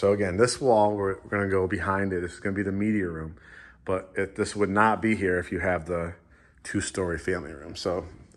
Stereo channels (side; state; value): both; identical; correlation 1.00